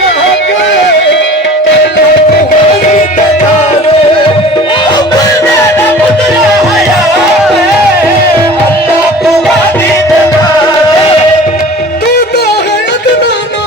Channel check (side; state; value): both; normal; correlation 0.42